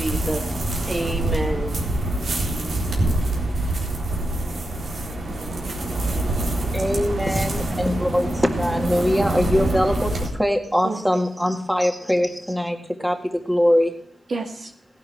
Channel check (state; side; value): normal; both; correlation 0.91